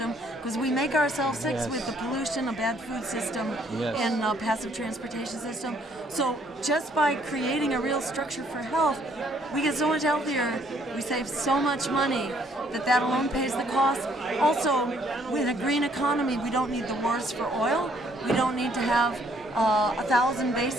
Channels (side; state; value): both; normal; correlation 0.65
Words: because we make ourselves sick with the pollution, a bad food system, and a passive transportation system. So just by creating a real structure for health, we get so much healthier, we save so much money that alone pays the cost. Also, with a green economy, we don't need the wars for oil. We don't need to have 1,000